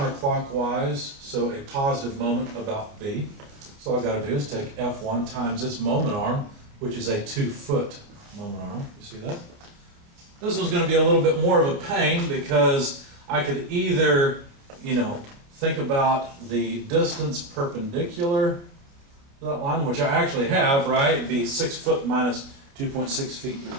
so a positive moment about B. So all I gotta do is take F1 times its moment arm, which is a 2-foot moment arm. You see that? This one's gonna be a little bit more of a pain because I could either, think about the distance perpendicular to that line, which I actually have, right? It'd be 6 foot minus 2.6 feet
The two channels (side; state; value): left; late; 29 ms